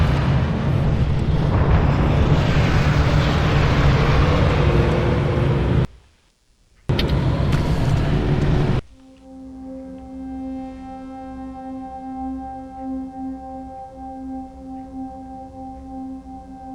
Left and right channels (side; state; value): both; identical; correlation 1.00